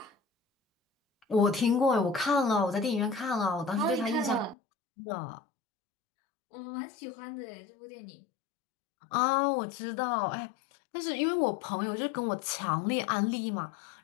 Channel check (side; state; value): right; drops out; at 4.5 s